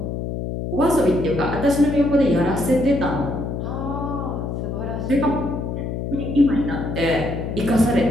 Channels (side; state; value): left; noise; hum, 4 dB below the sound